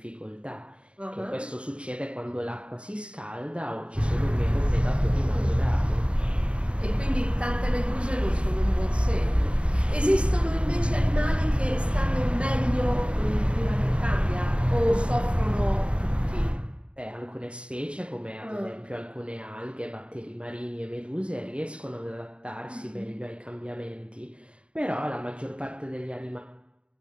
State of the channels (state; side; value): late; left; 0.057 ms